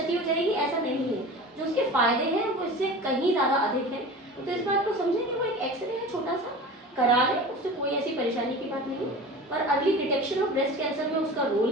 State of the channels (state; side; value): normal; both; correlation 0.35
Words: हो जाएगी, ऐसा नहीं है। जो उसके फायदे हैं वो इससे कहीं ज़्यादा अधिक है। तो इस बात को समझें कि वो एक एक्सरे है छोटा सा, करा ले, उससे कोई ऐसी परेशानी की बात नहीं है, पर early detection of breast cancer में उसका